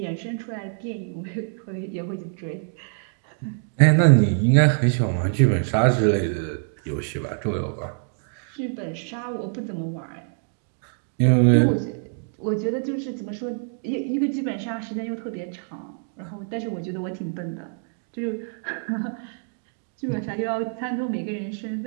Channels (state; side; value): silent; left; 62 dB below the other